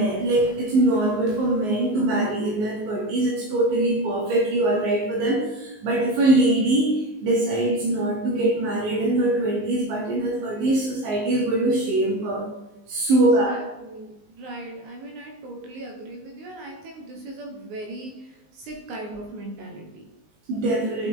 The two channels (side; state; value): left; late; 19 ms